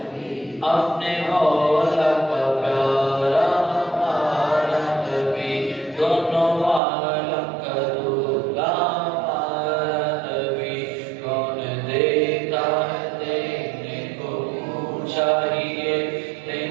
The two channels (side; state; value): left; drops out; at 6.8 s